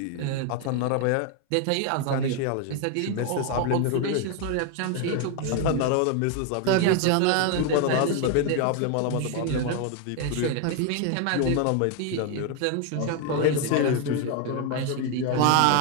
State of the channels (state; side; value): different; both; correlation 0.01